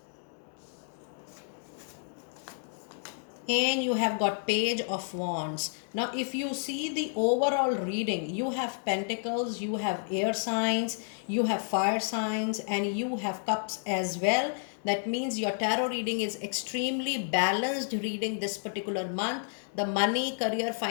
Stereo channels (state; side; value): silent; right; 57 dB below the other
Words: And you have got Page of Wands. Now if you see the overall reading, you have Pentacles, you have air signs, you have fire signs, and you have cups as well. That means your tarot reading is extremely balanced reading this particular month. The money, career,